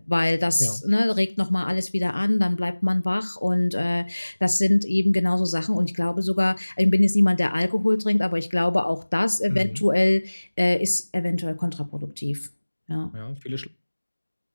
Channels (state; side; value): inverted; both; correlation -1.00